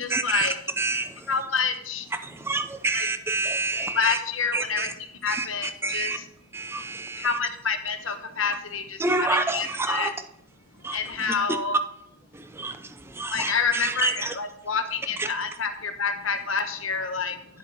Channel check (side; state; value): both; normal; correlation 0.06